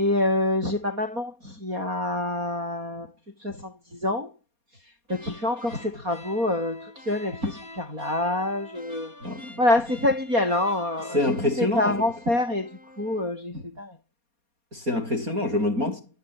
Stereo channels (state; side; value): late; left; 4.2 ms